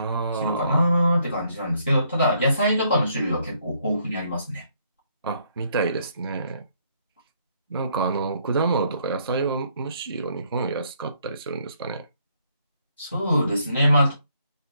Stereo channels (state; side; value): inverted; both; correlation -0.70